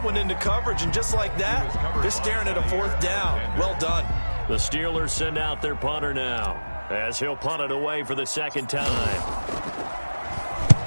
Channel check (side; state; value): both; inverted; correlation -1.00